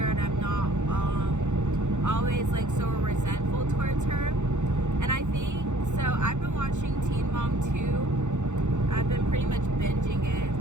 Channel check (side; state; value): left; late; 0.84 ms